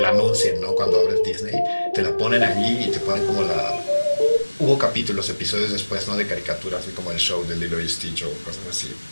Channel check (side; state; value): both; inverted; correlation -1.00